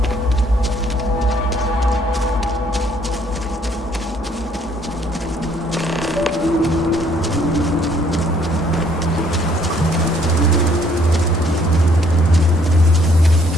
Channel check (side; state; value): both; normal; correlation 0.64